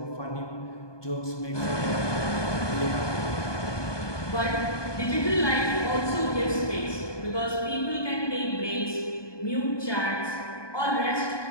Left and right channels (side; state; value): right; late; 1.2 ms